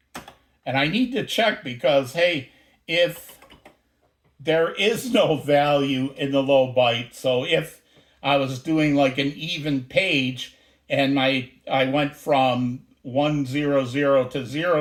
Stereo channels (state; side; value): identical; both; correlation 1.00